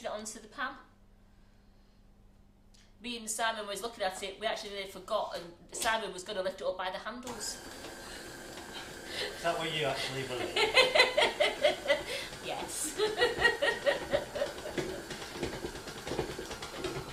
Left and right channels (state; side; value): identical; both; correlation 1.00